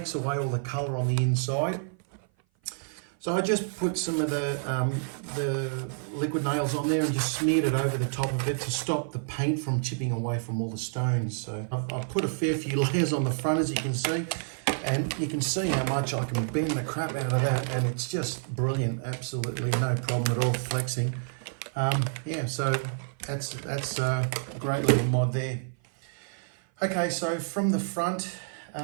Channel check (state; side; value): silent; left; 56 dB below the other